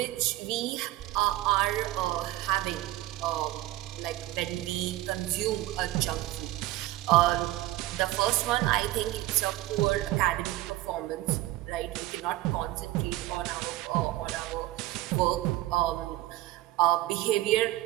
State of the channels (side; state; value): left; quieter; 16.5 dB